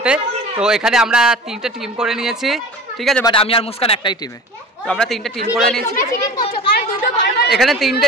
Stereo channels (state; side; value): normal; both; correlation 0.37